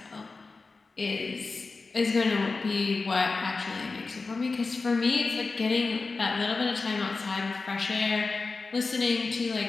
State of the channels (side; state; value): right; quieter; 4.0 dB